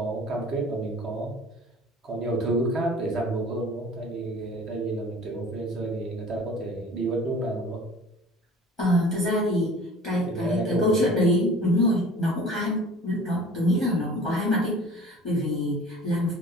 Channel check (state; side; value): normal; both; correlation 0.45